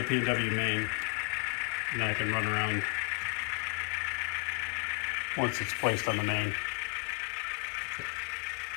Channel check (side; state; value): right; quieter; 38.0 dB